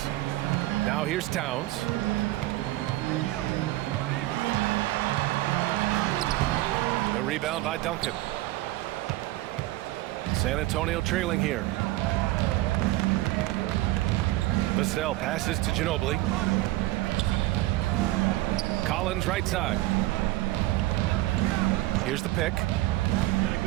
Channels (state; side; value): quieter; left; 17.7 dB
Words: Now here's Towns. The rebound by Duncan. San Antonio trailing here. Vassell passes to Ginobili. Collins right side. Here's the pick.